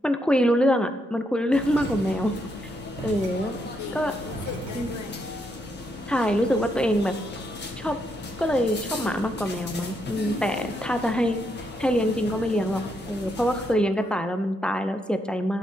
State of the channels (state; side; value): normal; both; correlation 0.78